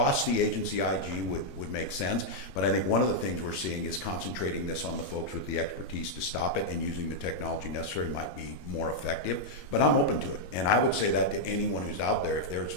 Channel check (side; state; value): right; late; 21 ms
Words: the agency IG would make sense, but I think one of the things we're seeing is concentrating this on the folks with the expertise to stop it, and using the technology necessary might be more effective. But I'm open to it. And I would say that to anyone who's out there, if